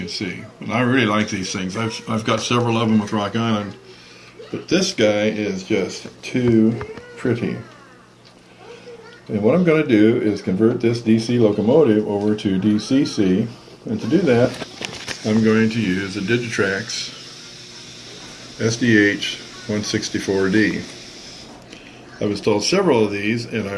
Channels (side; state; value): both; identical; correlation 1.00